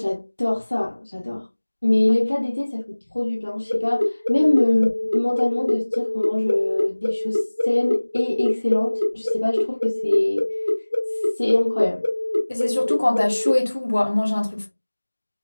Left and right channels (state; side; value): inverted; both; correlation -1.00